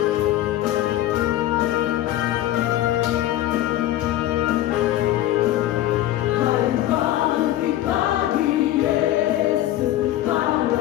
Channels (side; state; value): right; quieter; 14.0 dB